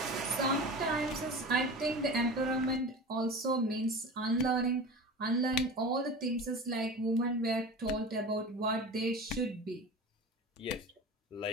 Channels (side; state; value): both; normal; correlation 0.33